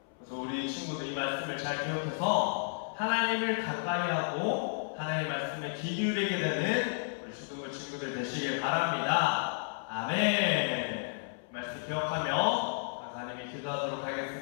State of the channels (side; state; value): right; silent; 56 dB below the other